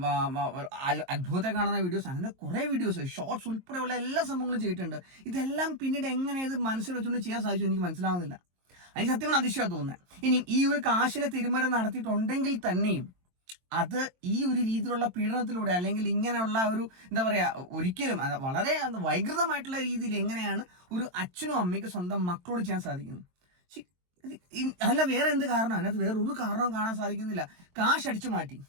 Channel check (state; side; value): late; left; 22 ms